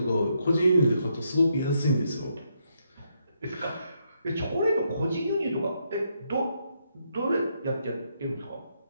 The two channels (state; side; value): inverted; both; correlation -0.78